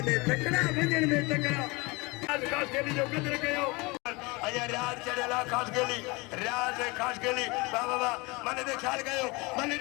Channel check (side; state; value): right; quieter; 25.6 dB